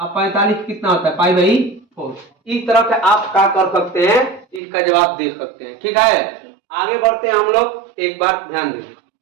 45 कितना होता है, पाई बाई 4। इस तरह से आप क्या कर सकते हैं, इसका जवाब दे सकते हैं। ठीक है, आगे बढ़ते हैं हम लोग, एक बार ध्यान दें।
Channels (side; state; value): left; drops out; at 4.6 s